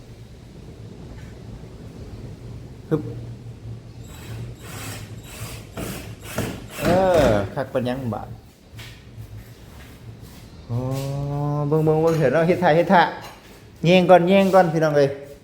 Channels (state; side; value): identical; both; correlation 1.00